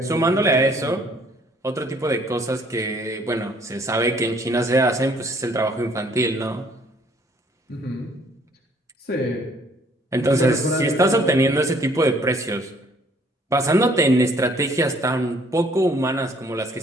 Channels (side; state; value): both; normal; correlation 0.61